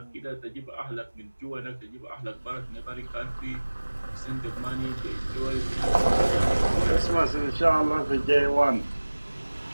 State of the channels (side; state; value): both; inverted; correlation -1.00